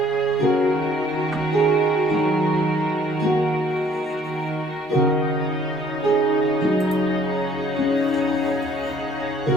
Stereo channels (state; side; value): normal; both; correlation 0.59